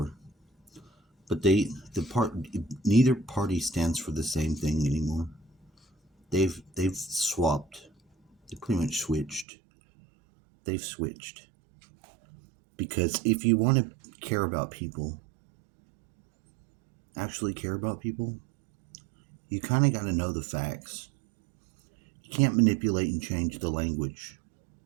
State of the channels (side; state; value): left; drops out; at 9.5 s